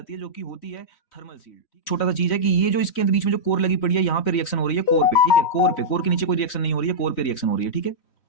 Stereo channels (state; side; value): late; right; 3.1 ms